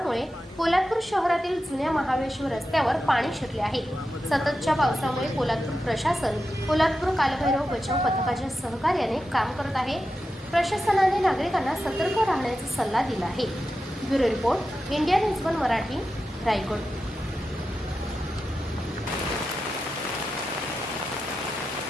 पोलादपूर शहरातील जुन्या महाबळेश्वर रस्त्यावर पाणी शिरले आहे। सततच्या पावसामुळे पोलादपूर प्रशासन पोलादपूर कालभैरव बचाव पथकाच्या सहकार्याने काम करत आहे। प्रशासनाने नागरिकांना सतर्क राहण्याचा सल्ला दिला आहे। Bureau report, India news 1 Marathi, Raigad.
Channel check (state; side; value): normal; both; correlation 0.90